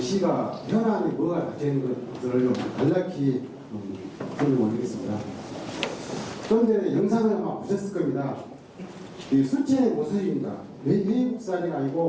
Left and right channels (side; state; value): both; identical; correlation 1.00